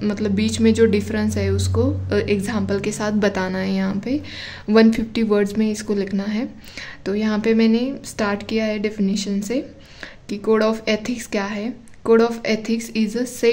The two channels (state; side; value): identical; both; correlation 1.00